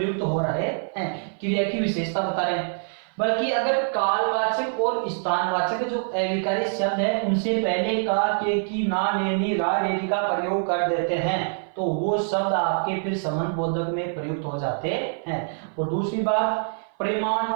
हो रहे हैं, क्रिया की विशेषता बता रहे हैं। बल्कि अगर कालवाचक और स्थानवाचक जो अविकारी शब्द है उनसे पहले का, के, की, ना, ने, नी, रा, रेरी का प्रयोग कर देते हैं तो वो शब्द आपके फिर संबंध बोधक में प्रयुक्त हो जाते हैं। और दूसरी बात,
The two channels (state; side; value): silent; left; 58 dB below the other